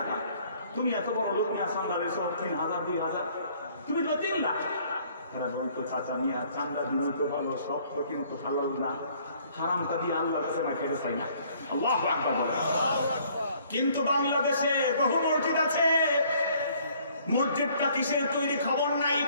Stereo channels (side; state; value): both; inverted; correlation -0.60